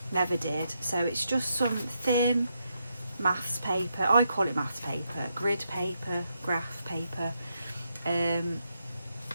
never did. So it's just some thin maths paper, I call it maths paper, grid paper, graph paper.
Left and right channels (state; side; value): inverted; both; correlation -0.82